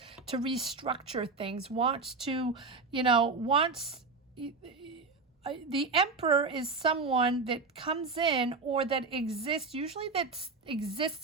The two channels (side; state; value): left; quieter; 4.1 dB